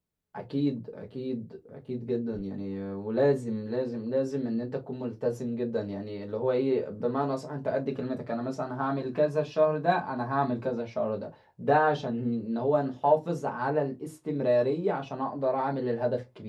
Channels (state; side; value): identical; both; correlation 1.00